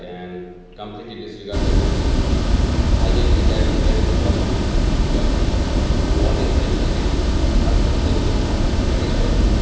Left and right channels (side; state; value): both; identical; correlation 1.00